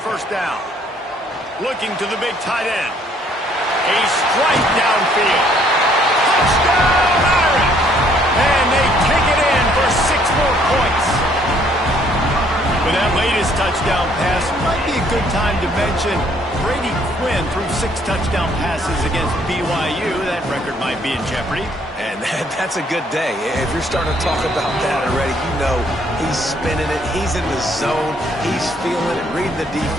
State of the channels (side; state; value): both; normal; correlation 0.64